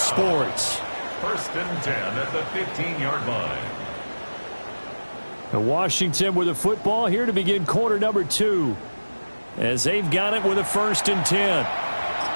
First and 10 at the 15-yard line. And Washington with the football here to begin quarter number 2. As they've got it with a 1st and 10.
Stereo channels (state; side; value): inverted; both; correlation -1.00